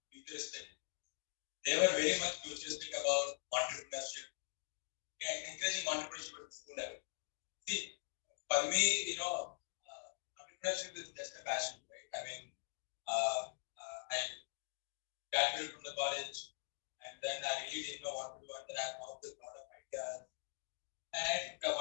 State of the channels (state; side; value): silent; right; digital silence